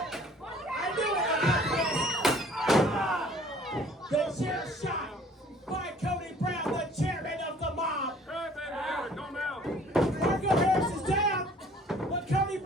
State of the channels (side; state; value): both; normal; correlation 0.54